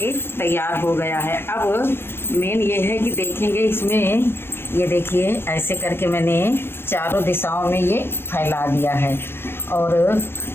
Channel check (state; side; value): late; right; 0.11 ms